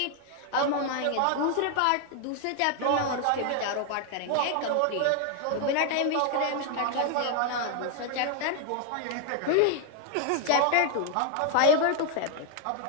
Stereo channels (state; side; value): different; both; correlation 0.00